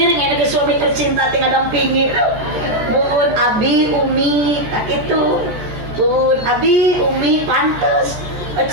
ya ke suami tercinta tinggal dampingi mun abi umi tak gitu mun abi umi pantes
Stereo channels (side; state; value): left; late; 14 ms